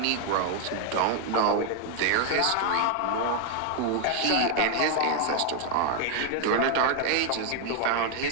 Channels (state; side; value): different; both; correlation 0.00